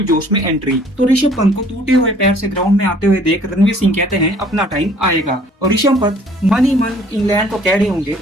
जोश में एंट्री। तो ऋषभ पंत को टूटे हुए पैर से ग्राउंड में आते हुए देख रणवीर सिंह कहते हैं अपना टाइम आएगा। और ऋषभ पंत मन ही मन इंग्लैंड को कह रहे होंगे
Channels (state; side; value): normal; both; correlation 0.56